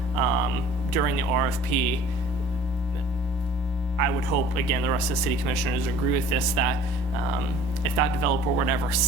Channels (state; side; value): normal; both; correlation 0.49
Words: during the RFP I would hope, again, the rest of the city commissioners agree with this, that if that developer would ever